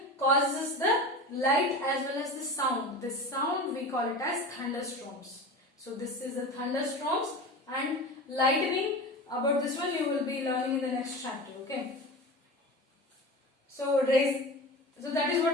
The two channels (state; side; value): normal; both; correlation 0.30